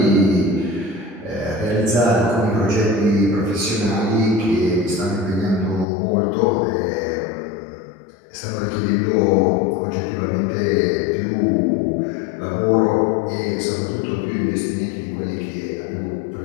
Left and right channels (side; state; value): right; drops out; at 5.9 s